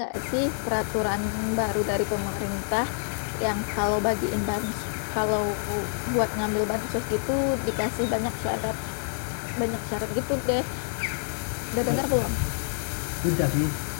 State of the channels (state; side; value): silent; right; digital silence